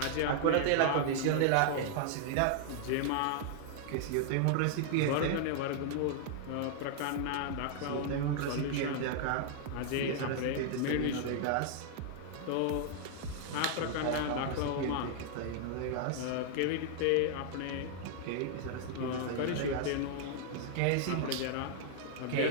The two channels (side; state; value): both; different; correlation 0.00